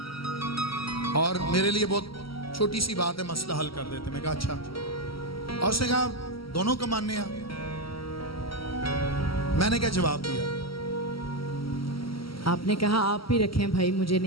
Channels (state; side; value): late; right; 0.75 ms